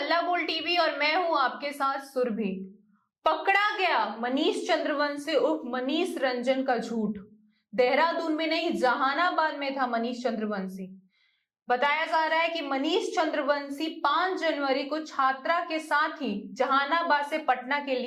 हल्ला बोल टीवी और मैं हूं आपके साथ सुरभि। पकड़ा गया मनीष चंद्रवंशी उर्फ मनीष रंजन का झूठ। देहरादून में नहीं, जहानाबाद में था मनीष चंद्रवंशी। बताया जा रहा है कि मनीष चंद्रवंशी 5 जनवरी को छात्रा के साथ ही जहानाबाद से पटना के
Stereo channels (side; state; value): both; identical; correlation 1.00